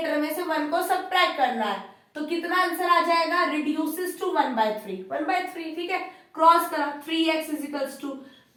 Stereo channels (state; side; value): identical; both; correlation 1.00